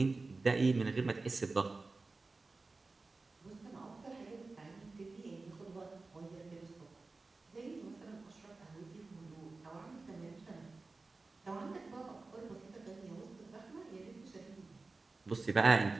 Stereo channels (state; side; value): quieter; left; 3.6 dB